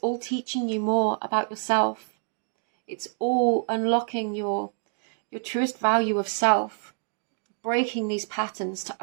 all teaching you more about yourself. It's all unlocking your truest value of self, breaking these patterns to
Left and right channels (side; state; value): left; silent; digital silence